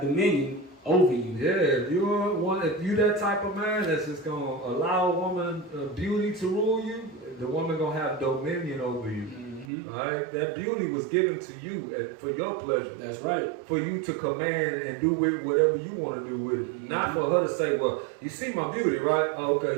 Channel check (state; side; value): drops out; left; at 9.7 s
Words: over you. Yeah, if you that type of man that's just gonna allow a woman beauty to rule you, the woman gonna have dominion over you. Mm-hmm. All right, that beauty was given to you for your pleasure. That's right. For you to command and do with whatever you want to do with it. Mm-hmm. Not for her to say, well, you see my beauty, right? Oh,